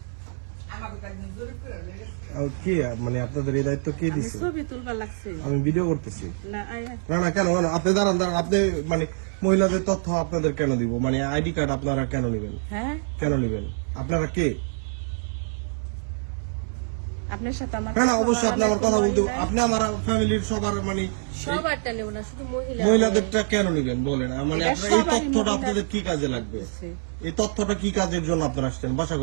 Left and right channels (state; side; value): silent; left; 61 dB below the other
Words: কে মানে আপনাদের এই দায়িত্ব কে দিছে? ছবি তুলবা লাগছে আমি ভিডিও করতেছি। না না কেন কেন আপনি দাঁড়ান দাঁড়ান, আপনি মানে মহিলাদের তথ্য আপনাদের কেন দিব? মানে আইডি কার্ড আপনারা কেন নিবেন? হ্যাঁ কেন নিবেন? আপনারা কে? আপনার সাথে আমার না অবশ্যই আপনি আমার কথা বলতে, আপনি আমার ফ্যামিলির সবার মানে সবারটা নেব না, শুধু মহিলাদেরটা কেন নিবেন বলেন? মানে আপনার এই তথ্যটা আপনাদের কি কাজে লাগবে? এই তথ্যটা কি কাজের জন্য আপনারা আসছেন? বাসা